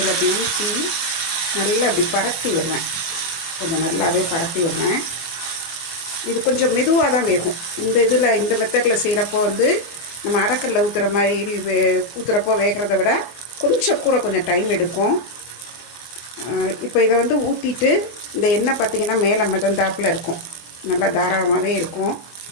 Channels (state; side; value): late; right; 24 ms